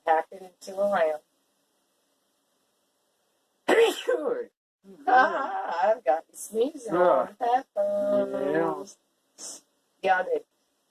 pack it into a round. Sure. I've got you sneezing on peppers. Yeah, I do.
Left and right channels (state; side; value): identical; both; correlation 1.00